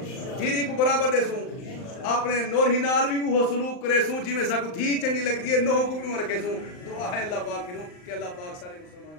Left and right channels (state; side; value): late; right; 39 ms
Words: جیری کو برابر دے سوں اپنے نور ہی نال بھی وہ سلوک کرے سوں جی میں سا کو تھی چنگی لگتی ہے نوہ کو بھی رکھے سوں دعا ہے اللہ پاک کی کہ اللہ پاک سارے مسلمان